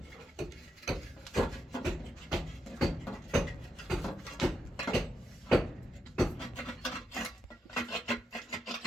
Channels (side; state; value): both; normal; correlation 0.83